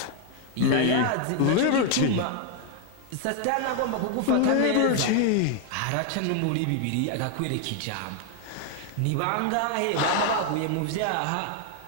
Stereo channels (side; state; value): both; different; correlation 0.00